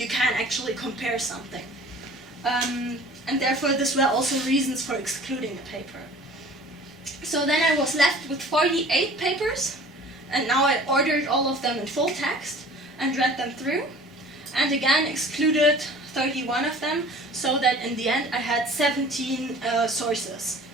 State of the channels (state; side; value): normal; both; correlation 0.46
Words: can actually compare something. And therefore, this were also reasons for excluding a paper. So then I was left with 48 papers, and now I ordered all of them in full text and read them through, and again excluded 31 of them, so that in the end I had 17 sources